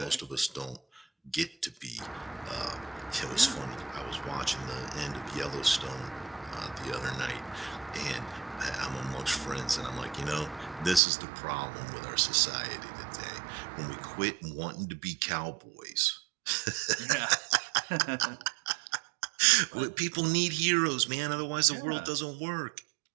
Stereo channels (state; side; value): drops out; left; at 11.0 s